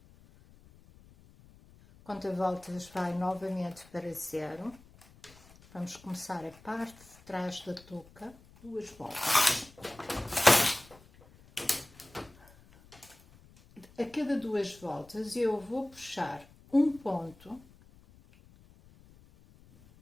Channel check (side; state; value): left; noise; rumble, 25 dB below the sound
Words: Conta voltas vai novamente para 0. Vamos começar a parte de trás da touca, 2 voltas. A cada 2 voltas eu vou puxar um ponto